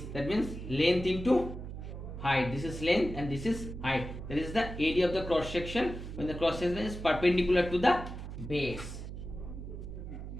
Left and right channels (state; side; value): noise; right; hum, 9 dB below the sound